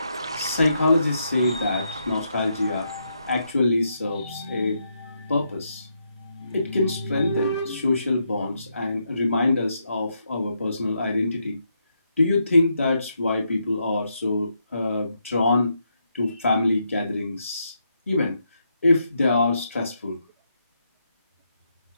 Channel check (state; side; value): inverted; both; correlation -0.80